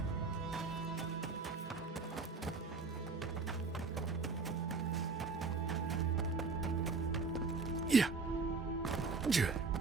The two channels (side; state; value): left; quieter; 4.3 dB